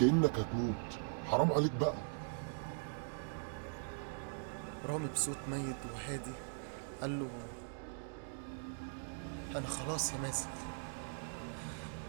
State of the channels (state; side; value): silent; left; digital silence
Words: هتموت، حرام عليك بقى. رامي بصوت ميت وهادي قال له أنا خلاص يا مازن،